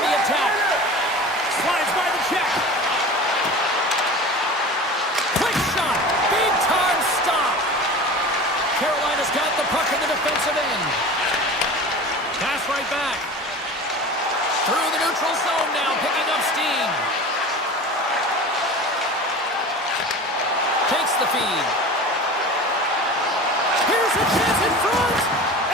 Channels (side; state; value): both; normal; correlation 0.35